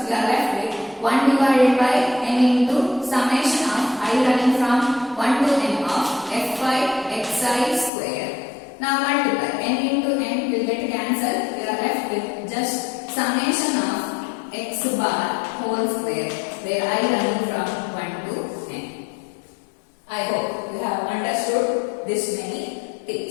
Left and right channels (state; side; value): drops out; right; at 7.9 s